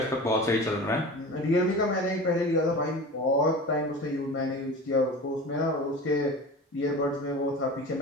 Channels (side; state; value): both; normal; correlation 0.34